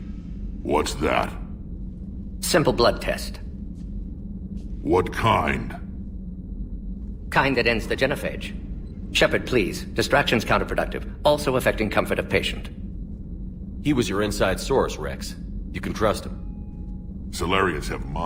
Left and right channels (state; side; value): identical; both; correlation 1.00